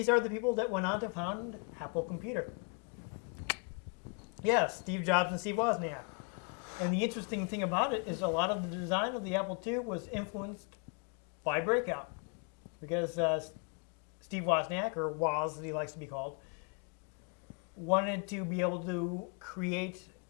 are the people that went on to found Apple Computer. Yes, Steve Jobs and Steve Wozniak. And the interesting thing about it is a lot of the design of the Apple II was influenced by Breakout. Because Steve Wozniak, or Woz as he likes to be called, wanted to be able to create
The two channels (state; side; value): quieter; right; 37.2 dB